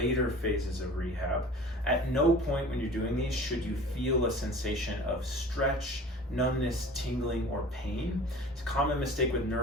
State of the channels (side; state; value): both; normal; correlation 0.42